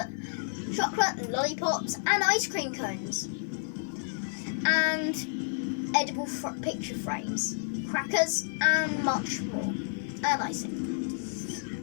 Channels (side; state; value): right; silent; 58 dB below the other